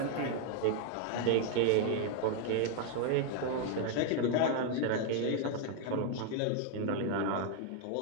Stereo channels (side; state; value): both; different; correlation 0.00